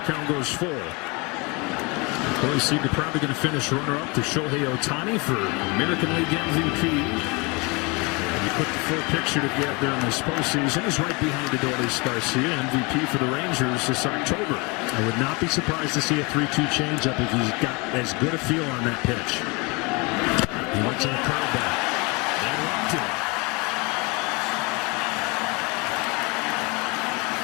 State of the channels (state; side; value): quieter; right; 28.3 dB